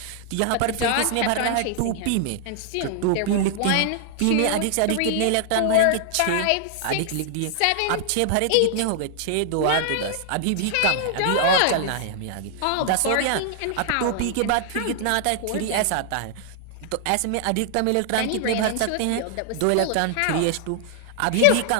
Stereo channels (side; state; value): both; different; correlation -0.01